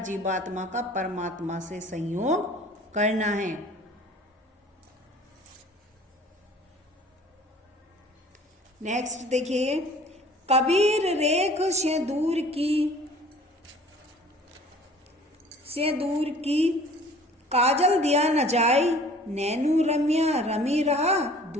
जीवात्मा का परमात्मा से संयोग करना है। नेक्स्ट देखिए, कबीर रेख से दूर की काजल दिया न जाई, नैनू रम्या रमी रहा,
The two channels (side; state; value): both; normal; correlation 0.49